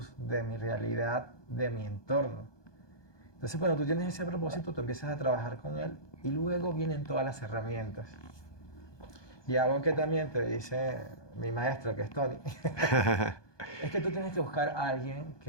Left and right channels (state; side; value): late; right; 1.2 ms